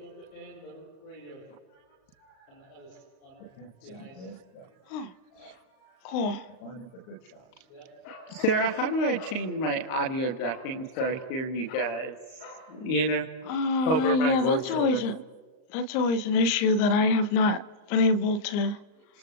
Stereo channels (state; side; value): late; right; 38 ms